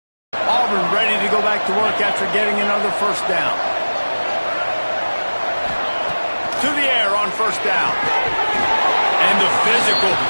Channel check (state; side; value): inverted; both; correlation -1.00